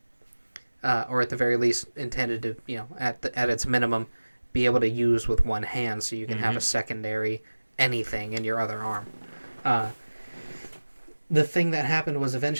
or at the very least intended to at its minimum be able to use with one hand so you can have a secondary anything in your other arm. The thing that happened was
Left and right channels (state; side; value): inverted; both; correlation -1.00